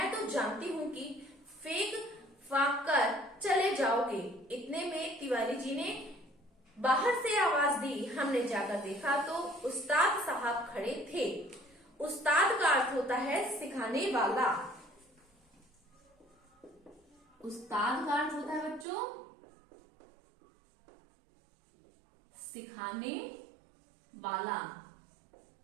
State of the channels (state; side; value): drops out; left; at 18.9 s